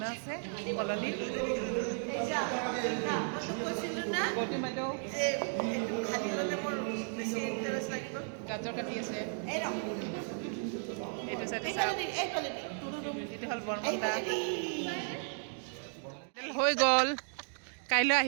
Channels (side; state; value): left; silent; 55 dB below the other